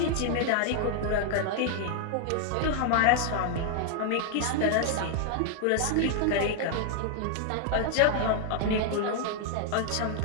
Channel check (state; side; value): different; both; correlation 0.00